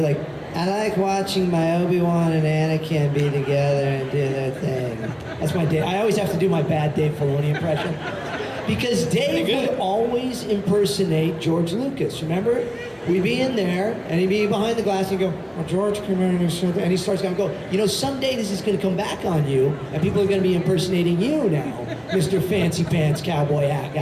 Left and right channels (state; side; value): identical; both; correlation 1.00